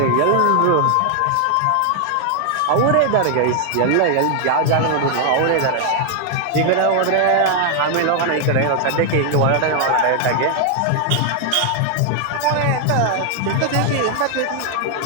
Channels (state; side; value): different; both; correlation 0.00